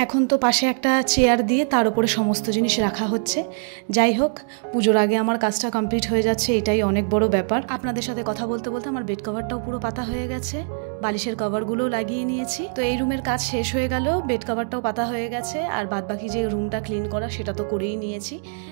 এখন তো পাশে একটা চেয়ার দিয়ে তার উপরে সমস্ত জিনিস রাখা হচ্ছে। যাই হোক, পুজোর আগে আমার কাজটা কমপ্লিট হয়ে যাচ্ছে, এটাই অনেক বড় ব্যাপার। আপনাদের সাথে কথা বলতে বলতে আমার বেড কভারটাও পুরো পাতা হয়ে গেছে, বালিশের কভারগুলো লাগিয়ে নিয়েছি। তো এই রুমের কাজ শেষ হয়ে গেল, বেড কভারটাও পাতা হয়ে গেছে, আর বাদবাকি যে রুমটা ক্লিন করা সেটা তো করেই নিয়েছি।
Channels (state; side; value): silent; left; 63 dB below the other